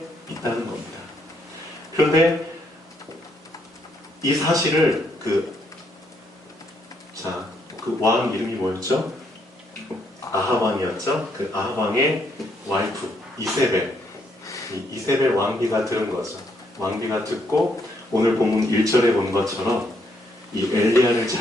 있다는 겁니다. 그런데 이 사실을 그 왕 이름이 뭐였죠? 아합왕이었죠? 그 아합왕의 와이프 이세벨, 이세벨 왕비가 들은 거죠. 왕비가 듣고 오늘 본문 1절에 본 것처럼 이 엘리야를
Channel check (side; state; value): both; normal; correlation 0.73